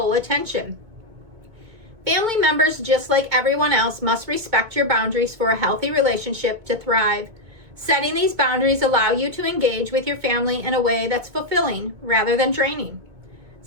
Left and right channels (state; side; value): late; left; 2.2 ms